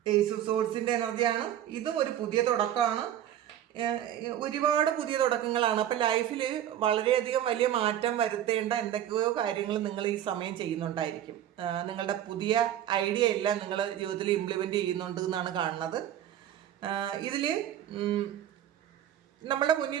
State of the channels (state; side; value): quieter; left; 11.2 dB